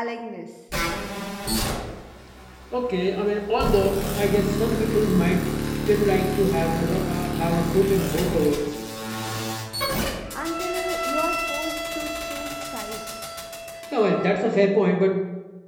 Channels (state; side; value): identical; both; correlation 1.00